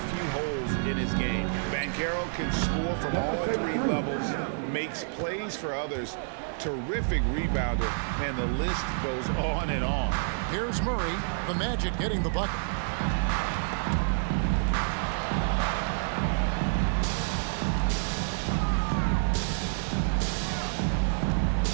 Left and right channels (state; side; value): silent; left; digital silence